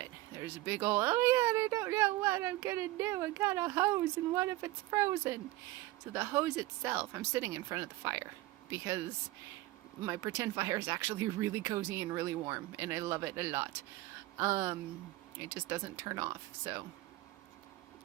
There's a big old, oh yeah, I don't know what I'm gonna do. I got a hose and what if it's frozen? So the hose itself, I'm sitting in front of the fire because my pretend fire is actually really cozy and really warm, and I love it a lot. It just doesn't turn off, so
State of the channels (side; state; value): left; quieter; 18.4 dB